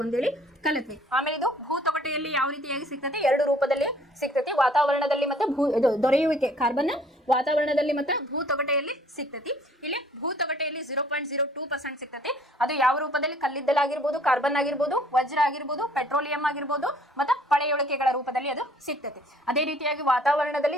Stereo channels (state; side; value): normal; both; correlation 0.58